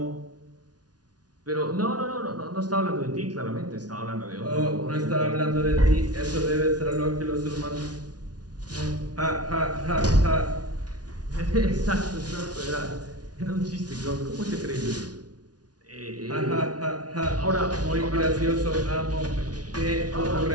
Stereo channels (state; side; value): late; left; 0.69 ms